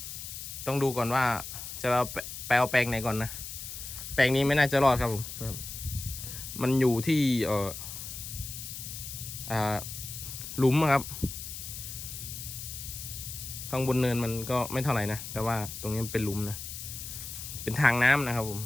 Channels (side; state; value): left; noise; hiss, 9 dB below the sound